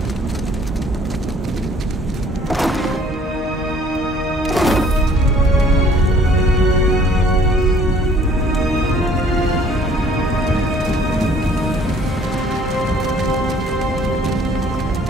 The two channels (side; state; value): both; normal; correlation 0.57